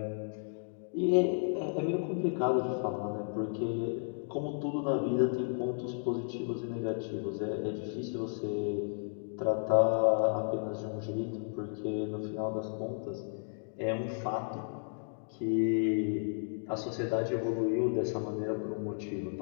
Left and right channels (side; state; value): right; silent; digital silence